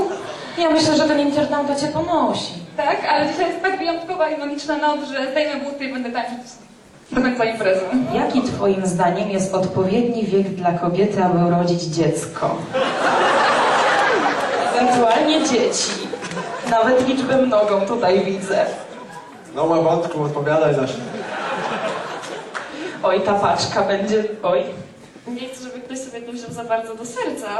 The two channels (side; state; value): both; identical; correlation 1.00